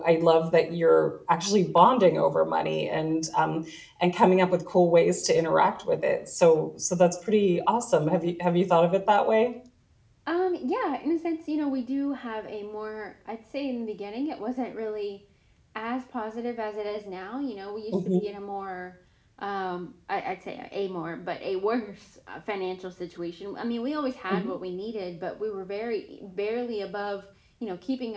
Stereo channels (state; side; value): identical; both; correlation 1.00